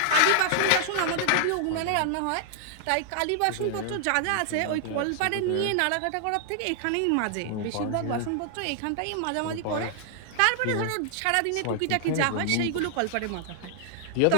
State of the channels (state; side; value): different; both; correlation -0.01